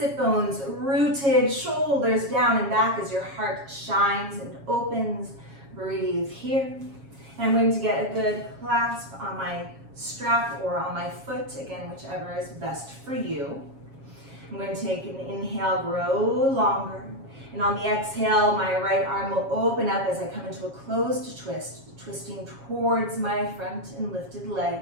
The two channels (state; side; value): late; left; 7.3 ms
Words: bones rooted, shoulders down and back as your heart shines and opens. Breathe here. And I'm going to get a good clasp on my strap or on my foot, again, whichever is best for you. I'm going to take an inhale, grow longer. And on the exhale, my right arm will open up as I come into a closed twist, twisting towards my front and lifted leg.